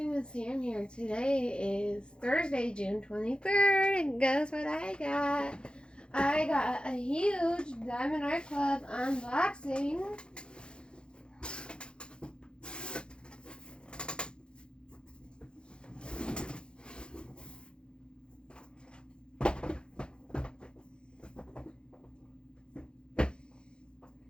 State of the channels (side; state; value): right; late; 0.052 ms